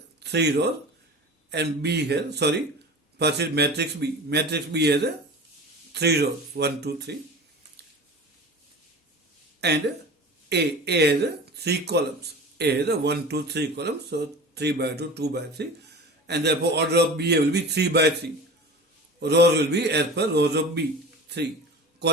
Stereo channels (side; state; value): both; normal; correlation 0.35